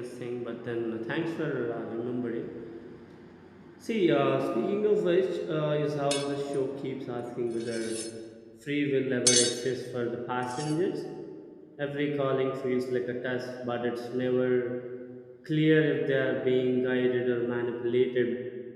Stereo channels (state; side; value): identical; both; correlation 1.00